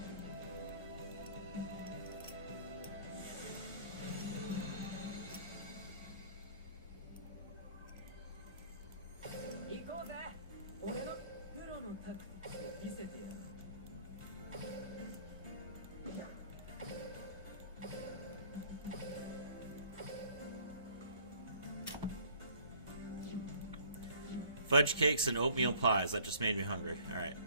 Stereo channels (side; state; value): both; inverted; correlation -0.54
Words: Fudge cakes and oatmeal pies. That just made me hungry. Alright.